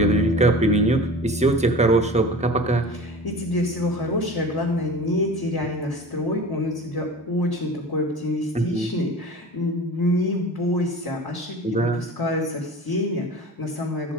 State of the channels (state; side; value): normal; both; correlation 0.37